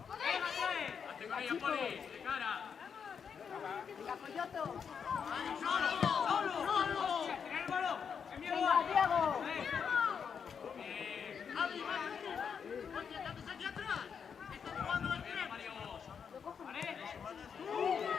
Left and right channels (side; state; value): right; quieter; 6.8 dB